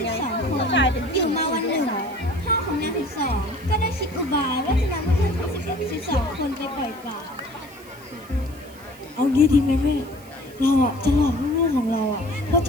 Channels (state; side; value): noise; right; hiss, 23 dB below the sound